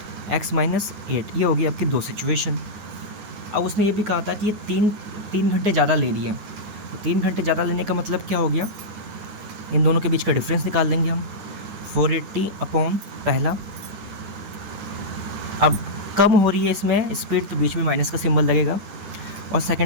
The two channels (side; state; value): left; late; 9.8 ms